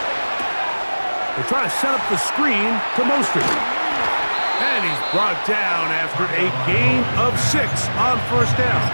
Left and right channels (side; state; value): both; inverted; correlation -1.00